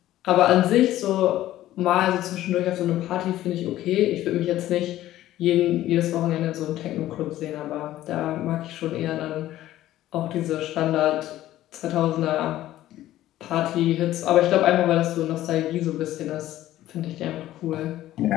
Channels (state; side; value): quieter; right; 14.2 dB